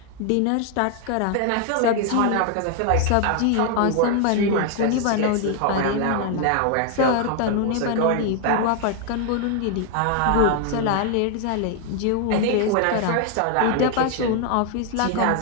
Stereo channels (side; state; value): both; different; correlation 0.00